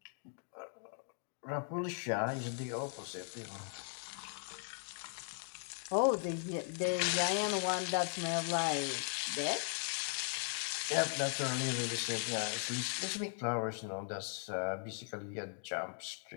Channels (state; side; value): silent; right; 52 dB below the other